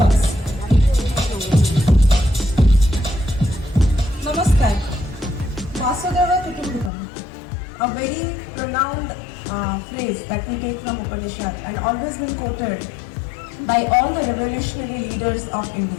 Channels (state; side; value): drops out; right; at 6.9 s